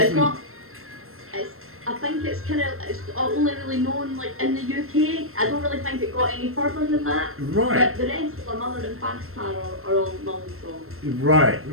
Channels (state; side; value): late; left; 0.62 ms